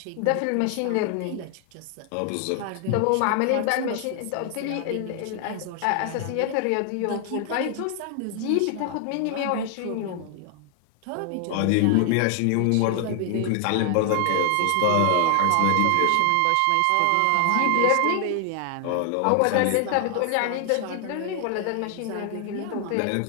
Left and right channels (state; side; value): different; both; correlation 0.00